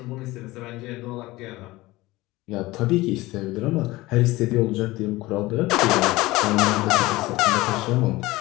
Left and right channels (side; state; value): right; quieter; 19.5 dB